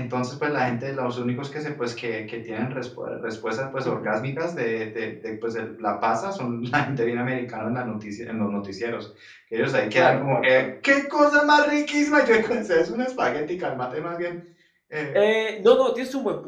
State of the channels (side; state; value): both; identical; correlation 1.00